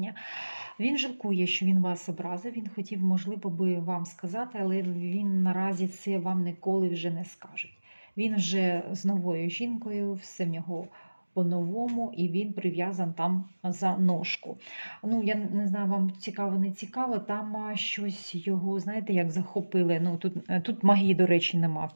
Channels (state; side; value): inverted; both; correlation -1.00